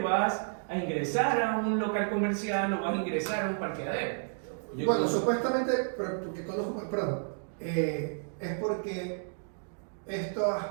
a ingresar a un local comercial o vas a ingresar a un parqueadero. Bueno, supuestamente, porque conozco, perdón, es porque estas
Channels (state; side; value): silent; left; digital silence